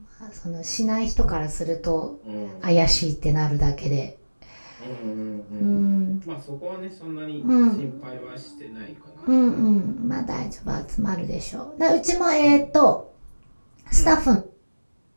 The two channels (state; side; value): inverted; both; correlation -1.00